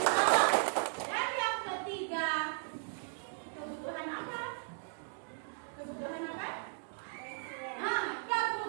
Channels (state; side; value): silent; left; digital silence